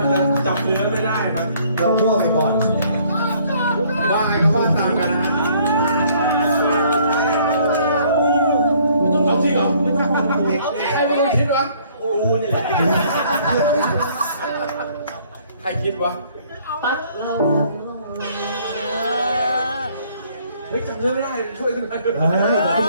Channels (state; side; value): inverted; both; correlation -0.61